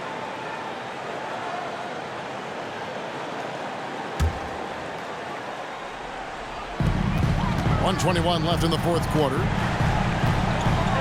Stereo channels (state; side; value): identical; both; correlation 1.00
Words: .121 left in the fourth quarter.